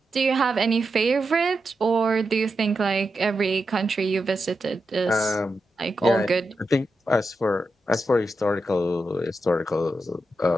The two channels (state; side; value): normal; both; correlation 0.88